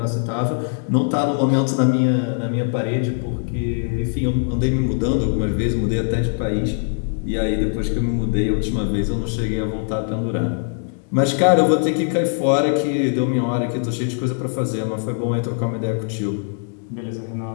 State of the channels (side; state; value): right; silent; 60 dB below the other